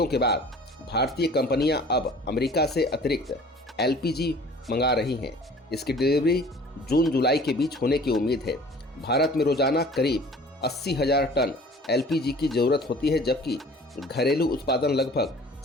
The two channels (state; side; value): normal; both; correlation 0.48